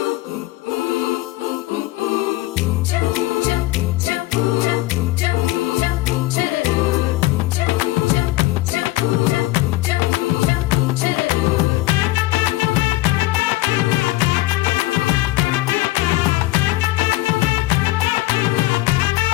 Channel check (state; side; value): quieter; right; 18.4 dB